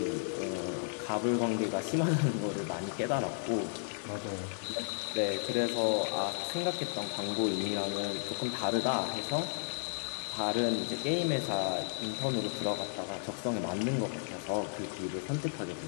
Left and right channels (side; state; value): right; silent; 55 dB below the other